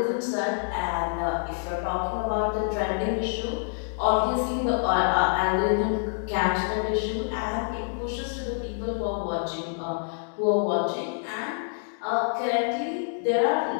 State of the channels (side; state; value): right; silent; digital silence